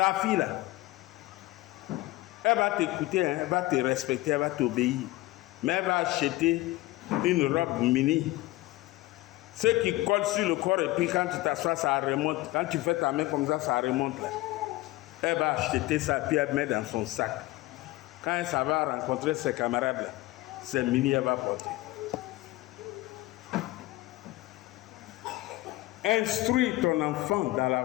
fille là, elle va t'écouter, hein, elle va te respecter, elle va t'obéir. Mais elle va acheter une robe mini. Ce qui colle sur le corps et puis quand tu t'assois, ça remonte. Quand tu fais ta main comme ça remonte là. Elle va acheter ça puis elle met dans son sac. Quand elle s'en va rencontrer ses camarades là, c'est mini, elle va porter. Instruis ton enfant dans la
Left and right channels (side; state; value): right; quieter; 18.7 dB